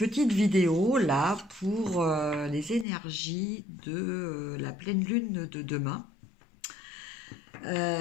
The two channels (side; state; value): right; drops out; at 2.9 s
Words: vidéo là pour les énergies de la pleine lune de demain.